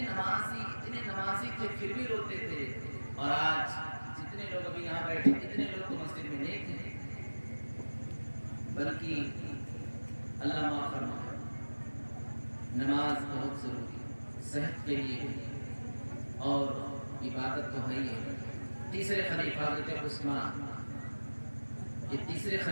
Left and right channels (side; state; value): both; inverted; correlation -1.00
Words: نمازی تھے پھر بھی روتے تھے. اور آج جتنے لوگ ابھی یہاں بیٹھے, اتنے لوگ تو مسجد میں نہیں تھے. بلکہ اللہ معاف فرمائے, نماز بہت ضروری ہے. صحت کے لیے اور عبادت تو ہے ہی ہے۔ تیسرے خلیفہ حضرت عثمان، یہ تیسرے